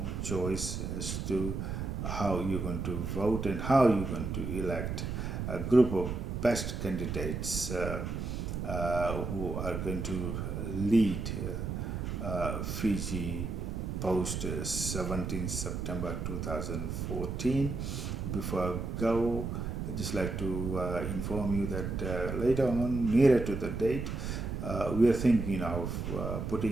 choice as to how you're going to vote and how you're going to elect a group of best candidates who are going to lead Fiji post 17 September 2014. Before I go, I'd just like to inform you that later on, nearer to the date, we are thinking of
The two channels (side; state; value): right; noise; rumble, 3 dB below the sound